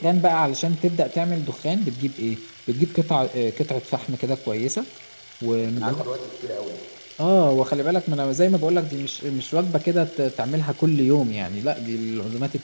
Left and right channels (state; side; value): inverted; both; correlation -1.00